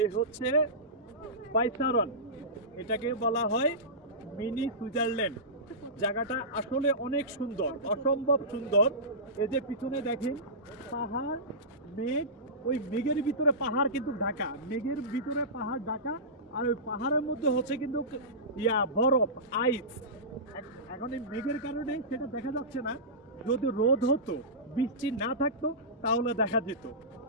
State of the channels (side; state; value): both; normal; correlation -0.19